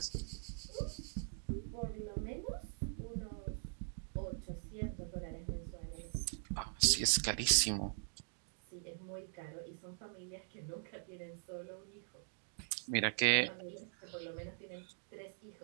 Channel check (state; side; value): silent; left; digital silence